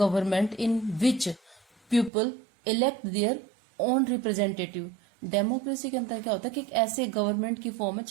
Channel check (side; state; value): left; drops out; at 2.1 s